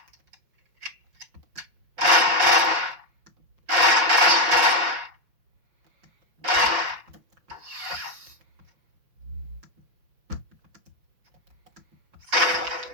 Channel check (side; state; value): left; late; 5.5 ms